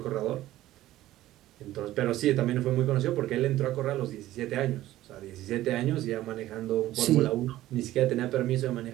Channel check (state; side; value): quieter; left; 15.0 dB